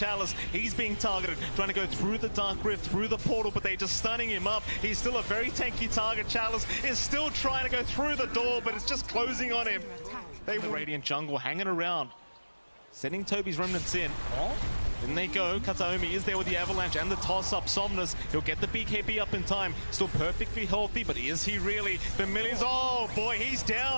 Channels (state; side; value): inverted; both; correlation -1.00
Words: he's being targeted, trying to go through the Dark Rift, through the portal, but they're just stunning him up. He's still a very tanky target. Chalice is still trying to go through the door, but it's just closing on him. They the Radiant Jungle hanging around, sending Toby's remnants in. In they go. Kataomi is there with the Avalanche and the toss-up. Somnus, he'll get the BKB up in time. Still perfectly healthy, but is he really? Familiars, oh boy, he's